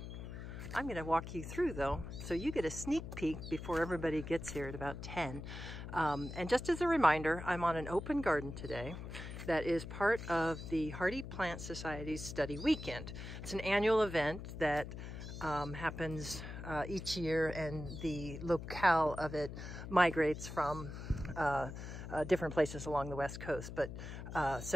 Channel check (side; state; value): left; noise; hum, 9 dB below the sound